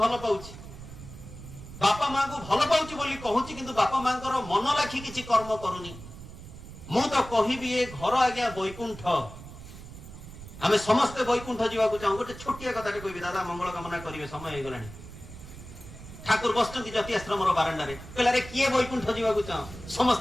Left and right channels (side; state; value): right; noise; rumble, 14 dB below the sound